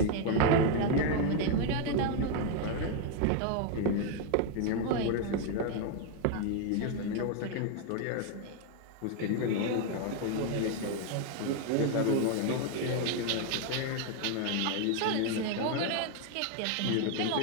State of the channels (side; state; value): both; different; correlation 0.01